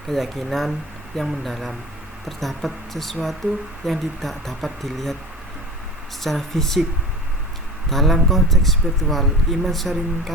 keyakinan yang mendalam terdapat sesuatu yang tidak dapat dilihat secara fisik. Dalam konteks spiritual, iman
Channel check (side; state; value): both; normal; correlation 0.36